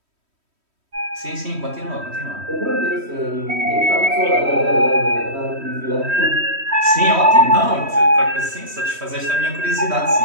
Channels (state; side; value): late; left; 3.1 ms